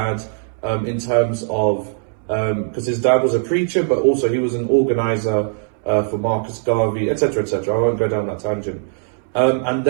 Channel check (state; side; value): silent; left; 66 dB below the other